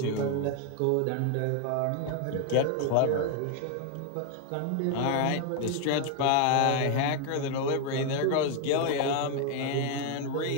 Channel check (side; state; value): both; different; correlation 0.01